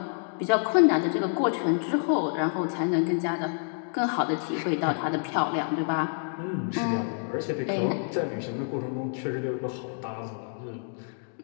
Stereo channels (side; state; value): right; silent; 59 dB below the other